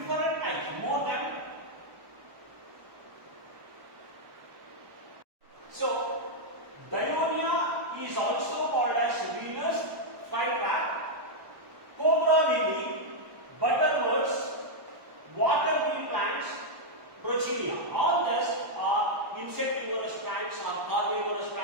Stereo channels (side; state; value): left; late; 1.1 ms